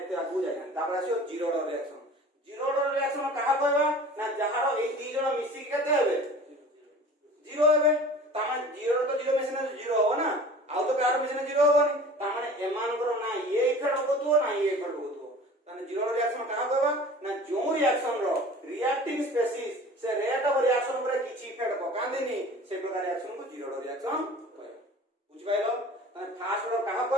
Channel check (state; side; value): normal; both; correlation 0.42